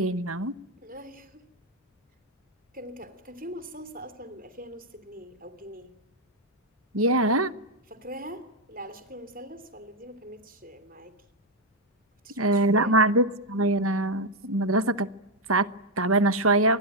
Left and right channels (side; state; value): both; normal; correlation 0.02